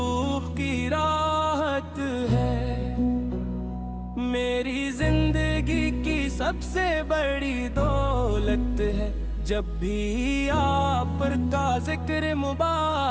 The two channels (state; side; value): identical; both; correlation 1.00